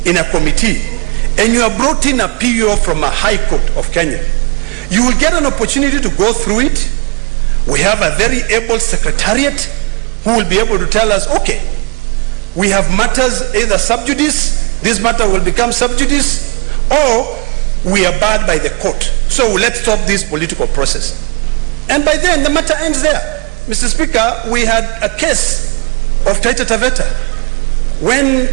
in a committee and you are brought in a PO from a high court of Kenya, you will get an opportunity to go through it. We have a very able secretariat who will be able to tell us, okay, we have matters either sub judice, this matter will become sub judice, or we are barred by the court. So let's stop this political process. And by then the matter ends there. Mr. Speaker, we had a case of Taita Taveta. When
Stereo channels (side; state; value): left; quieter; 31.1 dB